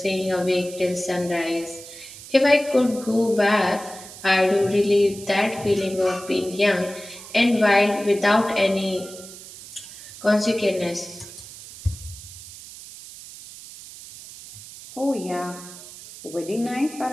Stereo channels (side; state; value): right; noise; hiss, 15 dB below the sound